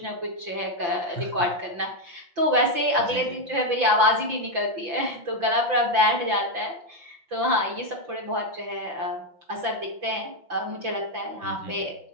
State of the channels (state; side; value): late; left; 5.9 ms